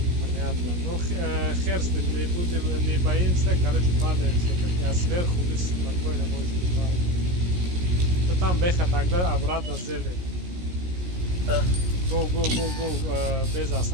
Понятно. Ну, хер с ним, не боимся, короче, падаем все-таки. А сверху вы спокойно можете падать. Там беха тогда обратно зелень. Да. Go, без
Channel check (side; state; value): left; late; 17 ms